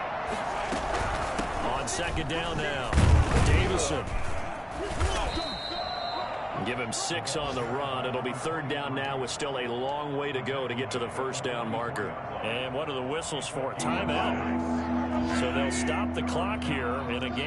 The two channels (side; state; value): both; identical; correlation 1.00